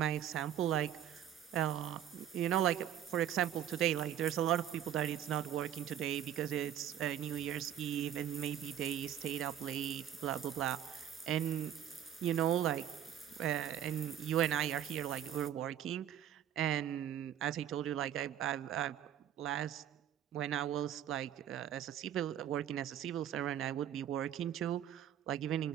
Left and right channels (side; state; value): left; quieter; 10.4 dB